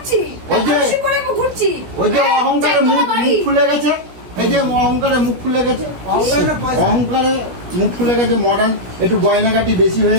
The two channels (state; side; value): late; left; 17 ms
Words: ওই যে- বেশি পরে ঘুরছি। ওই যে হ্যাঁ, অহংকারে চারতলা মুখ বাড়ি। খুলে গেছে, এই যে অহংকারে মুখ খুলে গেছে, অহংকারে না পয়সা। অহংকারে মুখ খুলে গেছে, মডার্ন একটু গয়নাগাটি বেশি